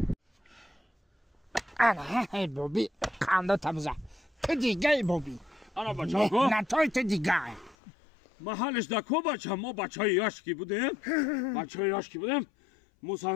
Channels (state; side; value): drops out; right; at 7.8 s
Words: ای بابی قندو تبزه تو دیگه ای بابی انا بچه کو نتای تو دیگه محلش دکو بچه ما بچه های یاشکی بودیم